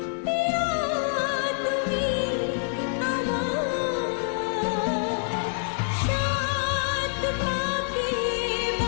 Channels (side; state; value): right; silent; 61 dB below the other